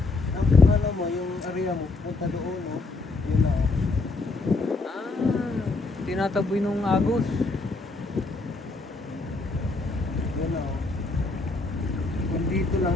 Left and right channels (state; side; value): quieter; right; 3.5 dB